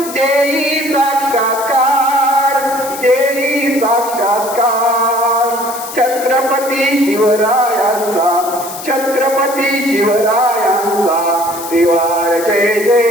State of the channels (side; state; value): left; noise; hiss, 11 dB below the sound